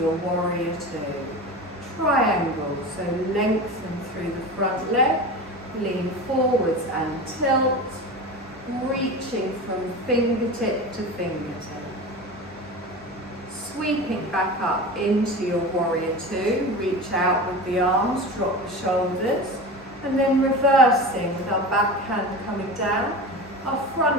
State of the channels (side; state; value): both; normal; correlation 0.29